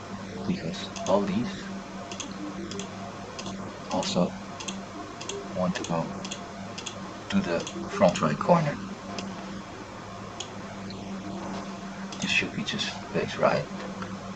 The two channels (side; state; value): both; identical; correlation 1.00